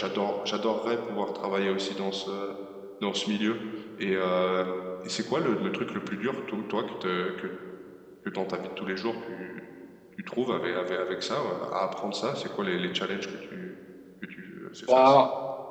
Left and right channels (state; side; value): identical; both; correlation 1.00